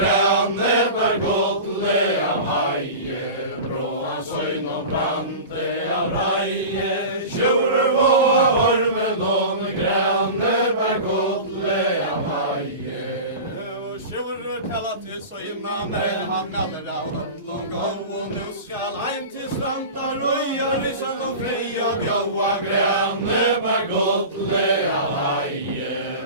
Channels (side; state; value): both; inverted; correlation -0.32